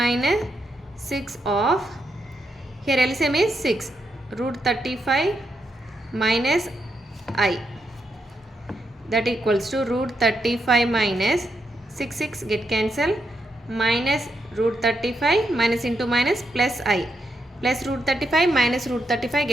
6 of, here LCM is 6, root 35 minus I, that equals to root 35 minus 6 get cancelled, minus root 35 minus into minus plus I, plus root 35 minus root 35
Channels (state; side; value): normal; both; correlation 0.82